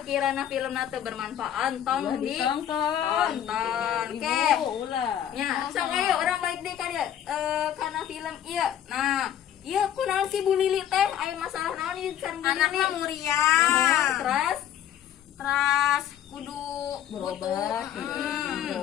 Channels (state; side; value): quieter; right; 10.5 dB